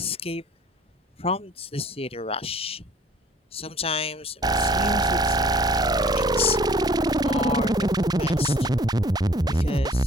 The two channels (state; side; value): normal; both; correlation 0.54